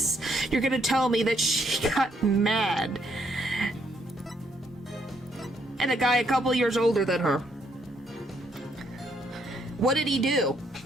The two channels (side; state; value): both; normal; correlation 0.72